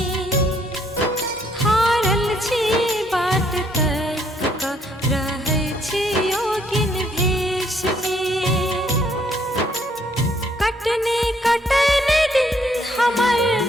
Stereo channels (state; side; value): normal; both; correlation 0.68